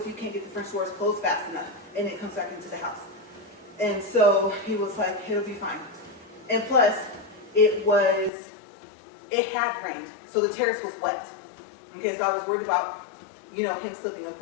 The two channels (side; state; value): right; drops out; at 8.3 s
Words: you can't get the French doors closed fast enough, and it comes back into the house? And so he was like, it'll be fine. And plus, it had rained, so the terrace was wet. Okay, so I was worried about, you know, him slipping. Of